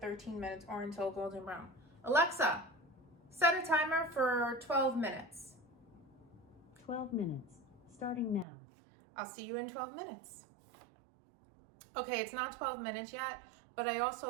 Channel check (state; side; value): drops out; left; at 8.5 s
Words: minutes or until golden brown. Alexa, set a timer for 12 minutes. 12 minutes, starting now. I'll see you in 12 minutes. Okay, it's not 12 minutes yet, but I